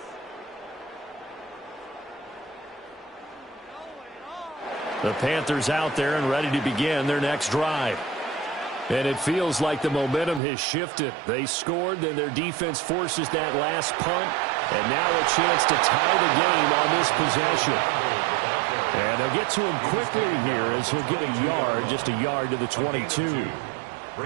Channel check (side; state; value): left; drops out; at 10.4 s